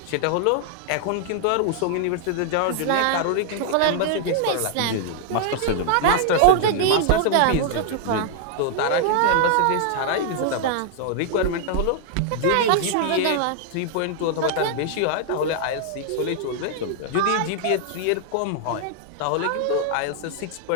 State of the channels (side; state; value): both; different; correlation 0.00